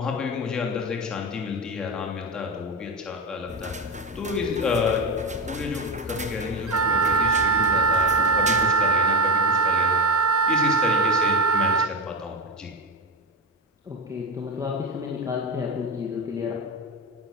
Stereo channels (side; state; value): both; normal; correlation 0.17